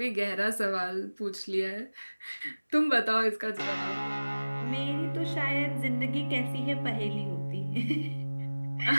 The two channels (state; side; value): inverted; both; correlation -1.00